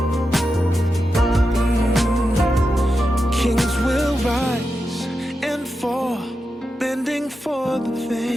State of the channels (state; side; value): normal; both; correlation 0.89